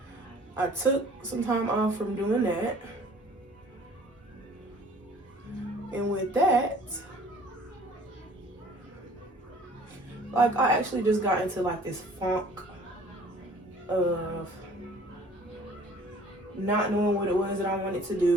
I took some time off from doing that. And with that, like, I actually just got into like this funk of not knowing what it was that I wanted to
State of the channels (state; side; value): normal; both; correlation 0.52